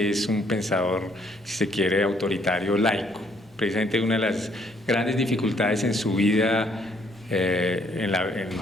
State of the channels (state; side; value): normal; both; correlation 0.67